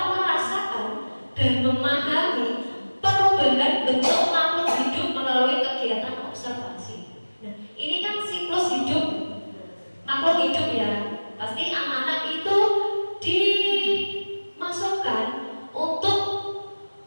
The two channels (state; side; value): inverted; both; correlation -1.00